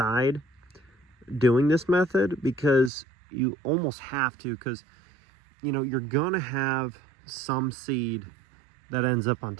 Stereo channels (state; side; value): drops out; left; at 2.9 s